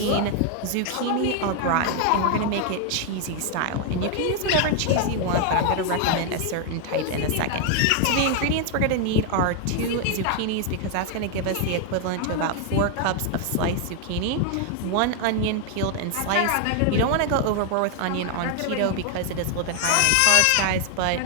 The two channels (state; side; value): different; both; correlation 0.00